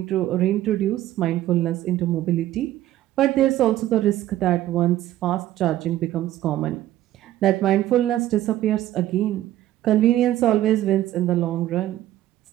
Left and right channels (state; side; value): quieter; left; 13.9 dB